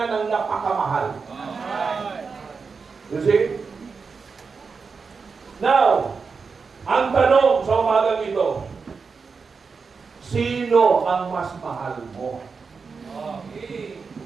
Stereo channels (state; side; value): quieter; left; 5.1 dB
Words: ng napakamahal. You see? Now, ang tanong sa umagang ito, sino ang mas mahal mo?